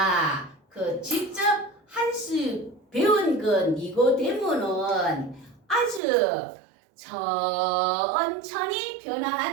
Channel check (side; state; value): left; drops out; at 6.0 s